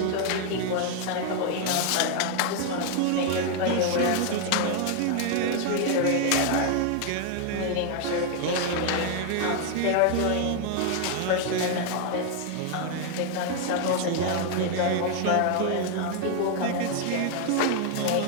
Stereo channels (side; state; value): both; different; correlation 0.00